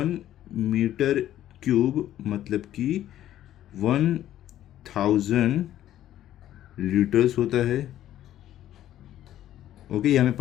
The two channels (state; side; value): quieter; right; 12.5 dB